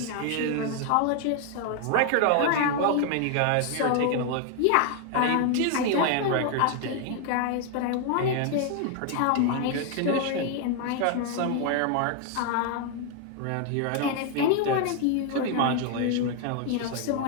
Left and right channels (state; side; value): different; both; correlation 0.00